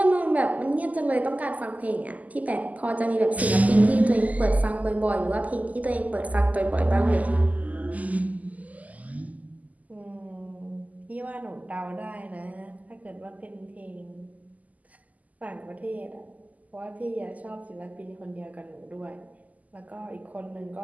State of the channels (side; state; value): left; late; 0.076 ms